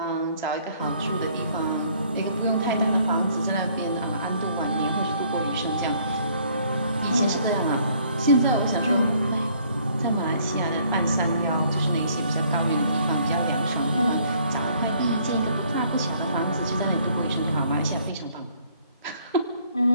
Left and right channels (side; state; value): both; inverted; correlation -0.62